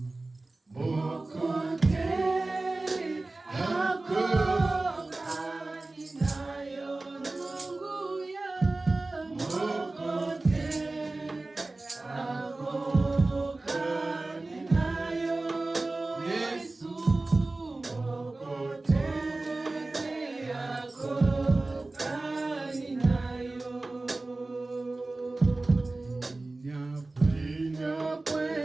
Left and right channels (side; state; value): left; quieter; 3.1 dB